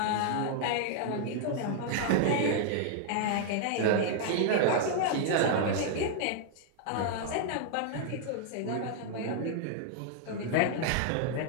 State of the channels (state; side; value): different; both; correlation 0.00